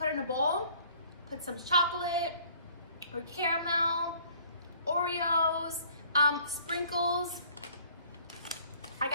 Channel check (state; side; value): inverted; both; correlation -0.55